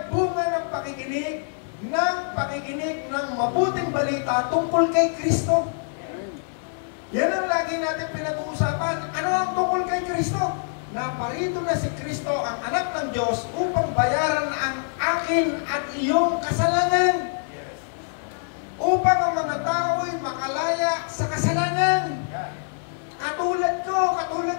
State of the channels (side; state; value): right; silent; 58 dB below the other